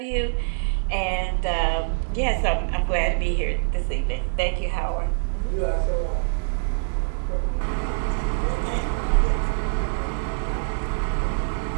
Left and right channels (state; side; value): silent; left; digital silence